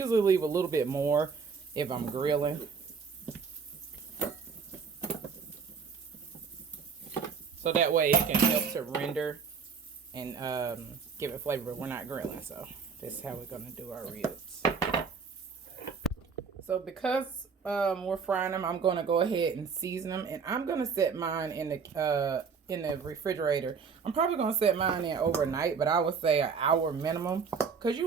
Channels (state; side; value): quieter; left; 5.7 dB